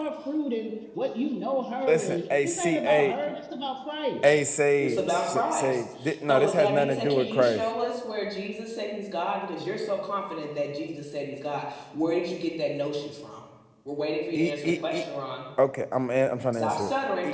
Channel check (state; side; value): identical; both; correlation 1.00